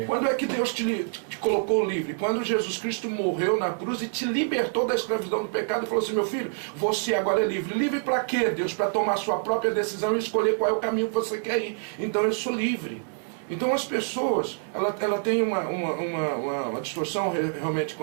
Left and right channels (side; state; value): left; silent; digital silence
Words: Quando é que Deus te colocou livre? Quando Jesus Cristo morreu na cruz e te libertou da escravidão do pecado e falou assim, meu filho, você agora é livre. Livre para quê, Deus? Para tomar sua própria decisão e escolher qual é o caminho que você quer ir. Então eu sou livre. Então as pessoas, ela tem uma distorção realmente